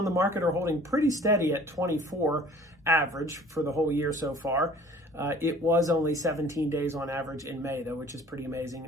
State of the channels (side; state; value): both; normal; correlation 0.50